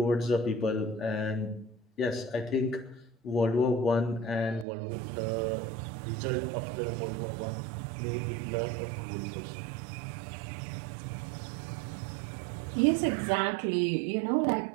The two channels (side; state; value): left; drops out; at 4.7 s